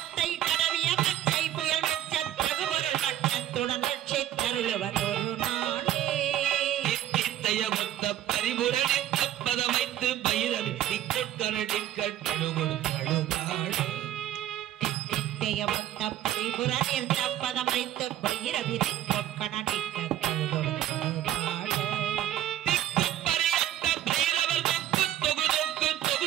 கடவிய பத்தை புயல் வெச்ச பகுபொருள் வட்டத்துடன் தருளுவர் ஒரு நாளே. பரிபுரணித்த பதமைத்து பைரவி திக்கொட்கனடிக்கழுகுழுதாள் தித்தையவத்த பரிபுரணித்த பதமைத்து பைரவி திக்கொட்கனடிக்கழுகுழுதாள் திக்கப்பரியத்த பைரவர் தொக்கு தொகு தொக்கு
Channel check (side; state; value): left; quieter; 12.3 dB